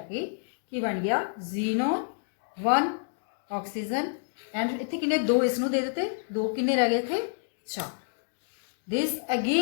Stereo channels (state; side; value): silent; right; digital silence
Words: ਕੇ ਕੀ ਬਣ ਗਿਆ xenon 1 ਆਕਸੀਜਨ ਐਂਡ ਇੱਥੇ ਕਿੰਨੇ 2 ਇਸ ਨੂੰ ਦੇ ਦਿੱਤੇ 2 ਕਿੰਨੇ ਰਹਿ ਗਏ ਇੱਥੇ 4. This